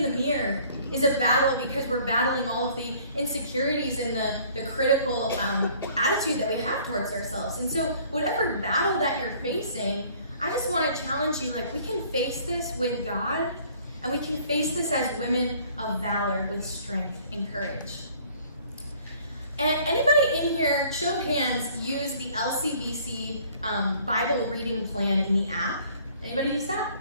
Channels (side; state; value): both; inverted; correlation -0.56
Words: the mirror is a battle because we're battling all of the insecurities and the critical attitude that we have towards ourselves. And so whatever battle that you're facing, I just want to challenge you, we can face this with God. And we can face this as women of valor with strength and courage. And anybody in here, show of hands, use the LCBC Bible reading plan in the app? Anybody use